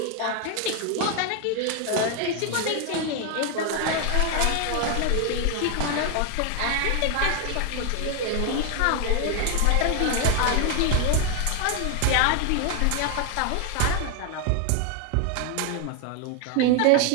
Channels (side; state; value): both; different; correlation 0.01